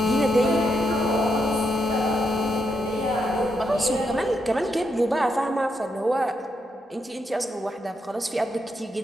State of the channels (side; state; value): both; normal; correlation 0.81